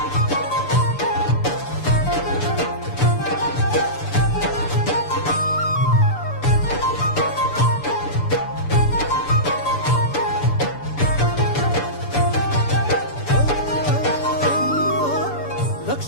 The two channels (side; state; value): right; late; 6.9 ms